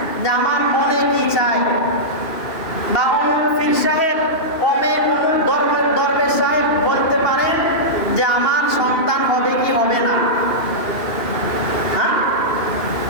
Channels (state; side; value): late; right; 2.7 ms